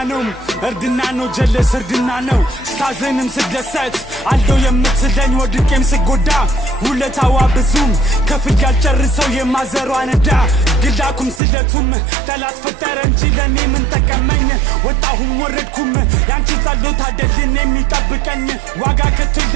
ነው ጀለስ እርድና ነው ስታዘንም ስደሰት አለው የምትለኝ ወድቄም ስጎዳ ውለታዋ ብዙም ከፍል ያልጨርሰው የማዘሯ ነዳ ግላኩም ስለቱም ጠላት ፈጠረ እንጂ ለኔ ምን ጠቀመኝ ወጣሁም ወረድኩም ያንቺ ጸሎት አይደልን የሚጠብቀኝ ዋጋ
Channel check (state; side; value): drops out; left; at 11.4 s